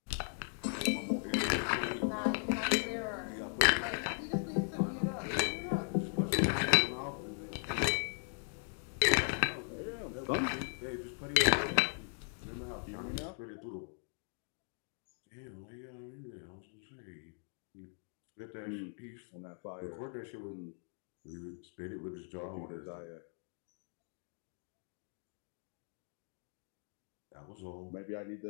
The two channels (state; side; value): silent; right; 52 dB below the other